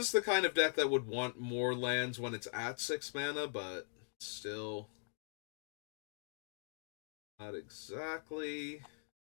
the kind of deck that would want more lands when it's at 6 mana, but still not exactly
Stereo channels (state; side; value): silent; right; digital silence